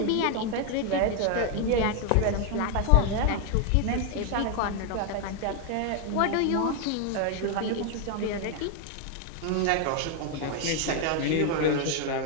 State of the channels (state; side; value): different; both; correlation 0.01